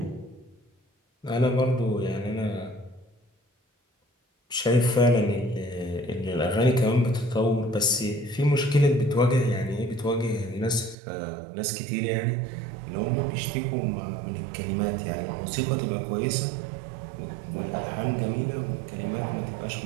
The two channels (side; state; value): left; drops out; at 11.0 s